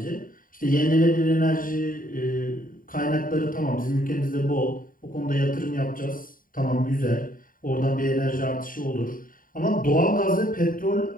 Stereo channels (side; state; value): right; late; 0.40 ms